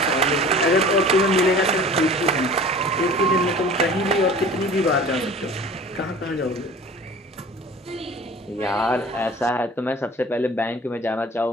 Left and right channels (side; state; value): both; normal; correlation 0.43